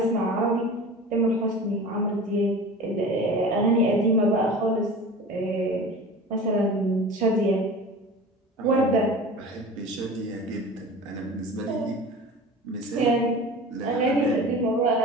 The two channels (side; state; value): both; normal; correlation 0.36